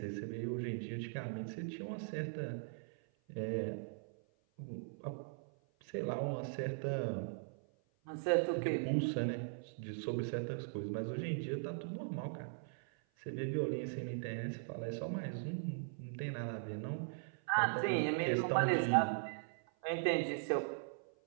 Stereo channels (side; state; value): left; silent; 51 dB below the other